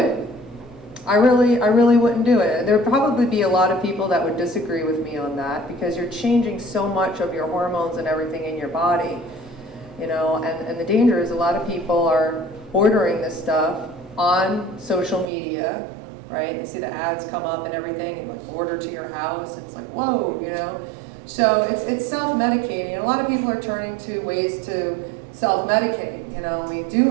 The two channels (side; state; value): left; drops out; at 15.2 s